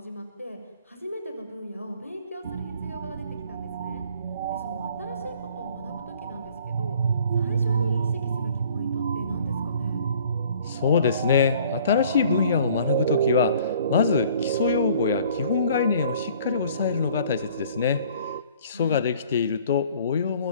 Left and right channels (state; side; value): inverted; both; correlation -0.54